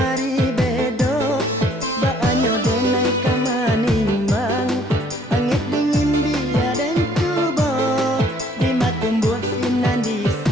bedo baanyo denai kamanimbang angit dingin dia dan cubo di matumbuh sinan di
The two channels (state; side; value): normal; both; correlation 0.61